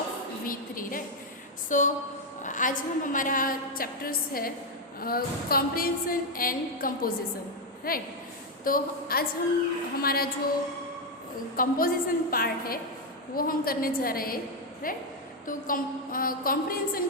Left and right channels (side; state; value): both; normal; correlation 0.03